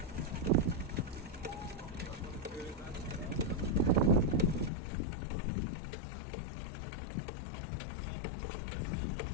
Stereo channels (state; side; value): drops out; right; at 4.7 s